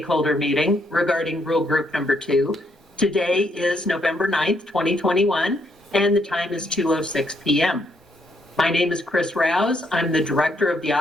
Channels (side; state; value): both; normal; correlation 0.74